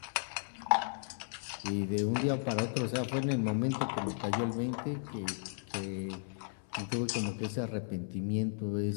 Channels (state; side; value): silent; right; 54 dB below the other